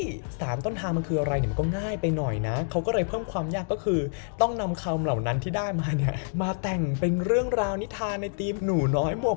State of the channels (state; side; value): silent; right; digital silence